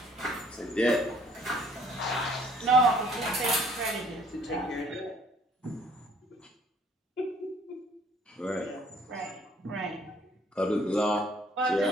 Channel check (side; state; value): both; normal; correlation 0.60